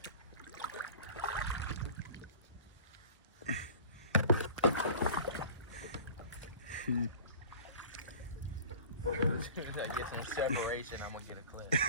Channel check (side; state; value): both; inverted; correlation -0.42